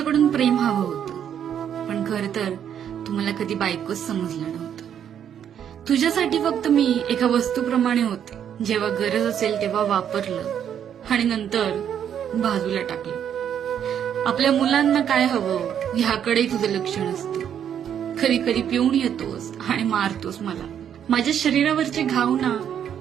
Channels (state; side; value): quieter; left; 9.1 dB